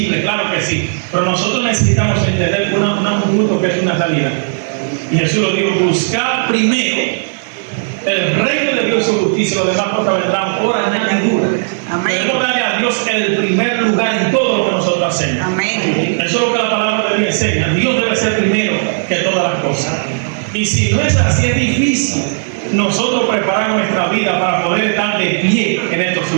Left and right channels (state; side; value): silent; left; digital silence